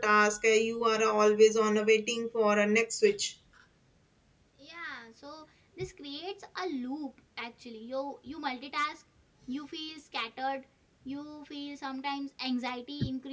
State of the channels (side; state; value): both; identical; correlation 1.00